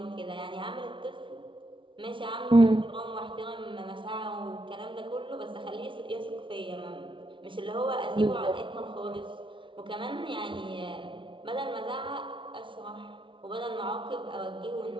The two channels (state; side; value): late; left; 0.25 ms